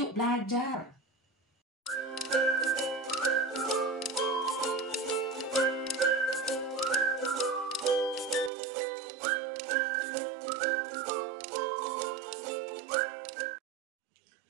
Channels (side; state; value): left; drops out; at 8.5 s